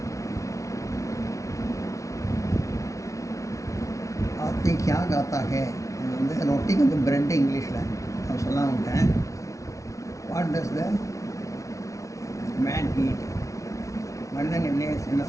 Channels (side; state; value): right; late; 0.15 ms